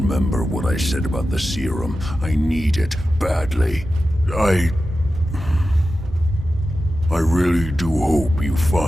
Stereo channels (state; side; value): normal; both; correlation 0.92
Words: what I said about the serum. I need it badly. I really do hope you